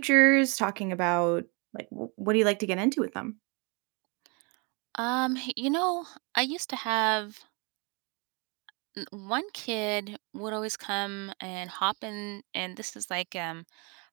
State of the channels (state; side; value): quieter; left; 32.3 dB